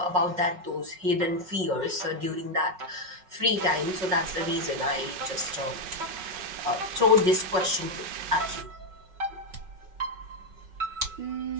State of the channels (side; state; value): left; late; 5.4 ms